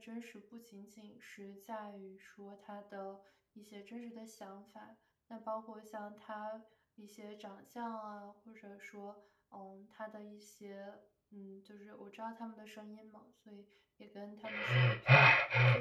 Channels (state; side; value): identical; both; correlation 1.00